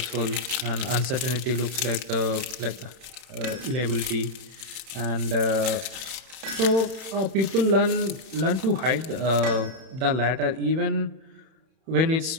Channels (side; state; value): left; late; 31 ms